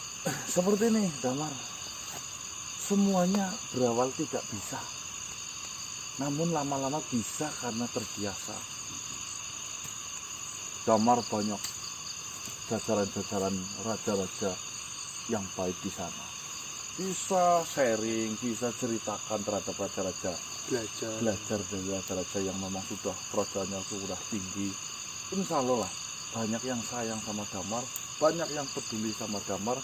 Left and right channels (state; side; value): identical; both; correlation 1.00